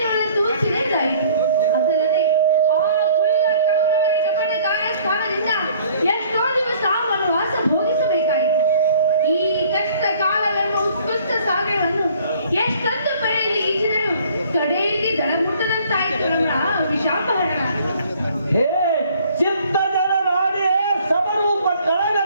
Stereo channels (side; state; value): both; inverted; correlation -0.56